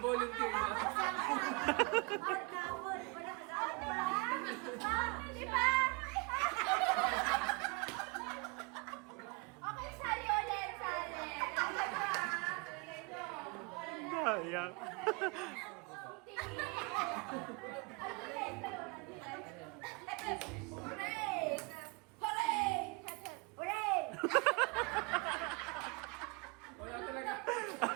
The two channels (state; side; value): quieter; left; 29.9 dB